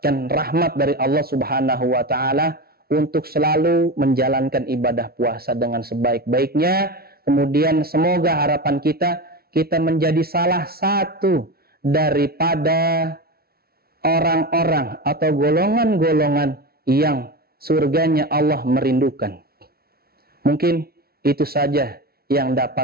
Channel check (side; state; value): left; late; 0.44 ms